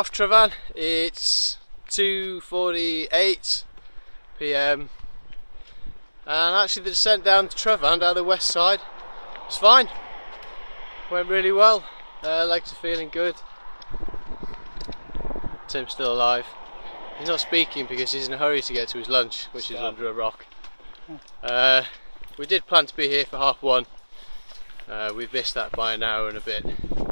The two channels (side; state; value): both; inverted; correlation -1.00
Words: Trevan. It's 2:48 PM, and actually the descent down to Trevan, down the west side, was fine. Went really well. Legs are feeling good. Tim's still alive. He's not speaking because he's in a hurry to get to his lunch, which is under a rock. We did plan to be here for 1:30. We've missed that by an hour and a bit,